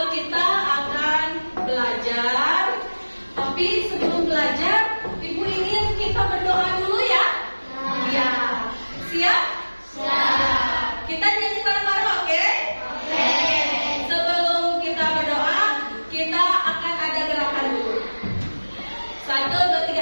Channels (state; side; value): inverted; both; correlation -1.00